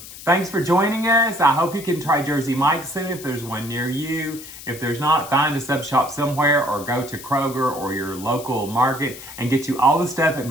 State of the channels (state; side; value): noise; left; hiss, 15 dB below the sound